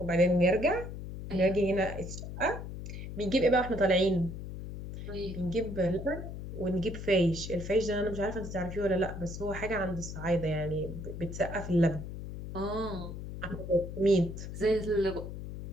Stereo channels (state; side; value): noise; left; hum, 9 dB below the sound